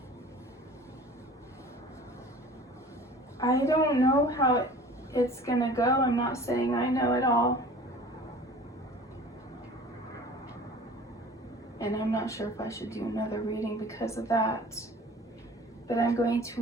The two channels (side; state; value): both; normal; correlation 0.44